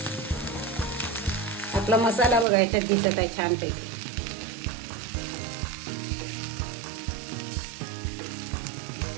आपला मसाला बघा याच्यात दिसत आहे छानपैकी.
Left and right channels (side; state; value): left; drops out; at 2.5 s